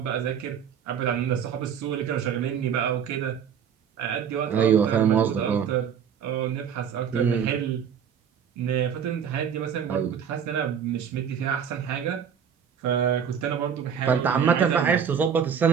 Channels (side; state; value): left; quieter; 7.8 dB